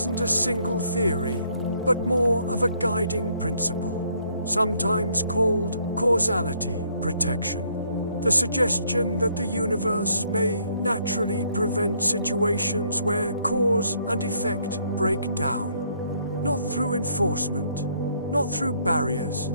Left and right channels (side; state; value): both; inverted; correlation -0.68